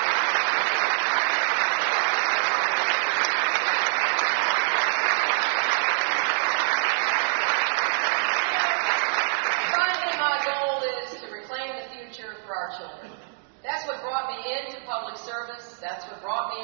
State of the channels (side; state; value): left; silent; digital silence